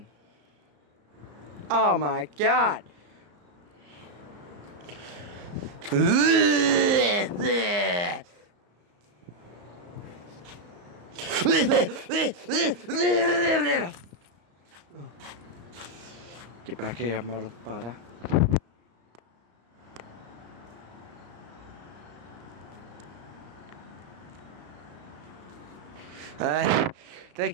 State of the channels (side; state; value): left; late; 34 ms